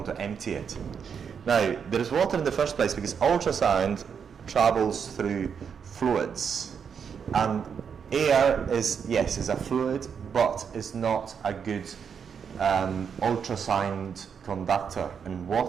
to empty it? Now, there is water in the first place because ultrasound travels through fluids, and air is a fluid, but is not a good ultrasound conductor, and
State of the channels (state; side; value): quieter; left; 6.9 dB